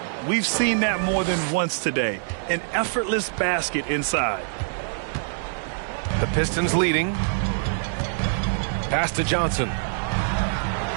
We've seen that more than once today. An effortless basket inside. The Pistons leading. Pass to Johnson.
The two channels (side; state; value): left; silent; digital silence